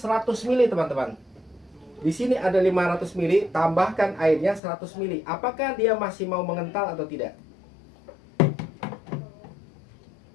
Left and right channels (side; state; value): right; drops out; at 4.6 s